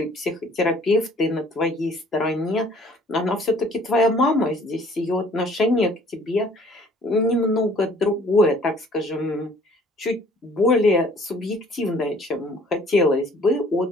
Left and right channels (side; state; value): both; normal; correlation 0.56